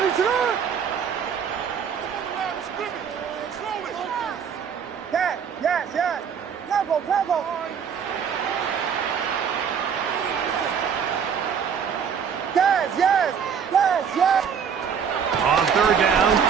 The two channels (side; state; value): left; quieter; 7.2 dB